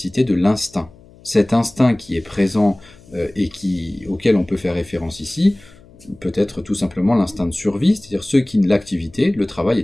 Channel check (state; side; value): noise; left; hum, 25 dB below the sound